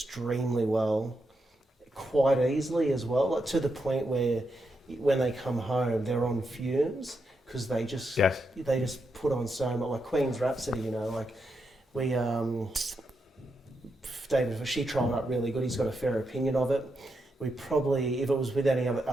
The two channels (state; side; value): normal; both; correlation 0.84